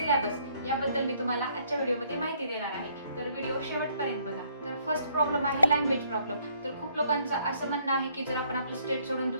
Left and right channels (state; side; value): inverted; both; correlation -0.65